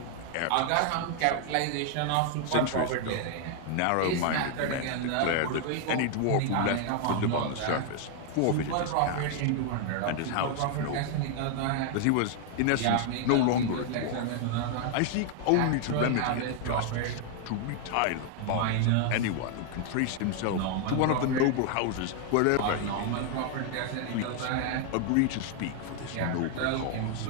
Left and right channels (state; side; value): different; both; correlation 0.00